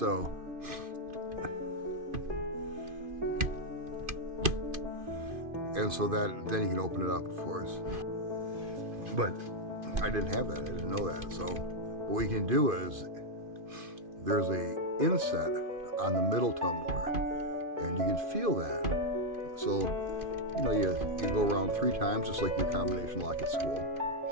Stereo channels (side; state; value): left; late; 2.5 ms